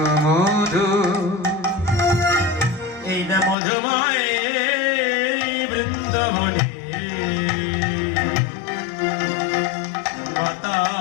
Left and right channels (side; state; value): right; drops out; at 3.6 s